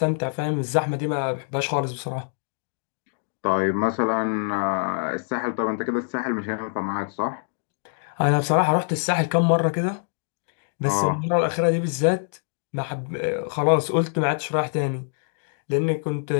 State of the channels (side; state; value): right; silent; digital silence